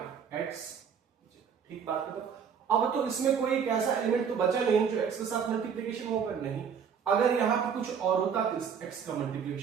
x। ठीक बात करो। अब तो इसमें कोई एक ऐसा एलिमेंट तो बचा नहीं जो x के साथ मल्टीप्लीकेशन होगा, नहीं। अगर यहां पे कुछ और होता तो इस x का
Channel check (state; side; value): quieter; left; 7.1 dB